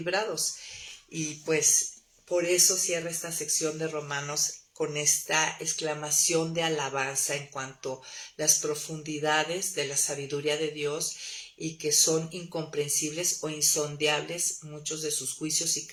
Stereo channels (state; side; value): identical; both; correlation 1.00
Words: Y pues por eso cierra esta sección de Romanos con esta exclamación de alabanza en cuanto a las profundidades de la sabiduría de Dios y que son incomprensibles o insondeables muchos de sus juicios y